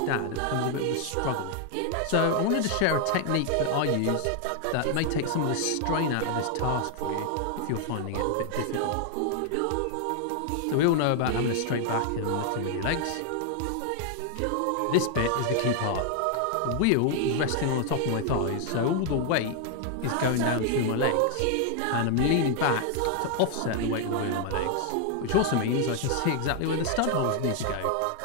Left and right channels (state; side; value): different; both; correlation 0.00